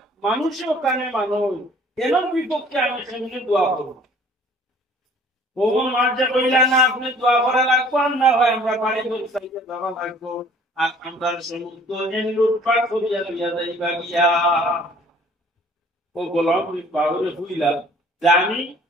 মানুষও কানে মানুষ এর বিপক্ষে আমি সেমনি দোয়া করব। কখন মাঝে কইলা না আপনি দোয়া করা লাগবো, আর না হয় আমরা বাড়ি করে চাইতে যাওয়া লাগবো, আর আমরা সমুদ্র লুটপাট করিয়া লইয়া যাইবা গিয়া। ও গোলাম বাবুরে হইলা যে আমি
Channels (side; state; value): both; normal; correlation 0.54